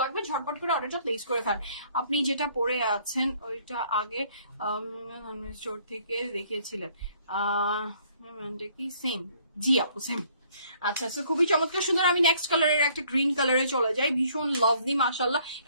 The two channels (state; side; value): inverted; both; correlation -0.62